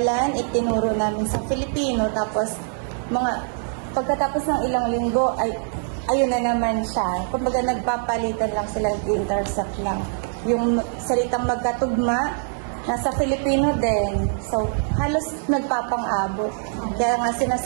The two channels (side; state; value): left; silent; digital silence